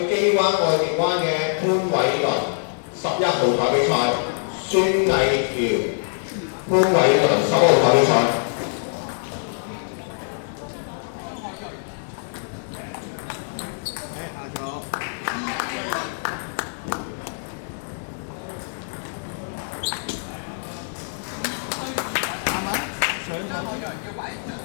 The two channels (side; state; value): right; silent; digital silence